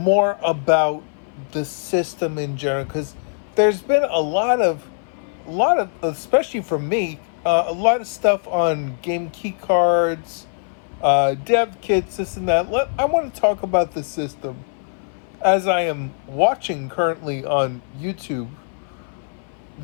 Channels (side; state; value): right; silent; 59 dB below the other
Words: about the system in general, because there's been a lot of, especially for me, a lot of stuff on game key cards, dev kits, this and that. I want to talk about the system as I am watching currently on YouTube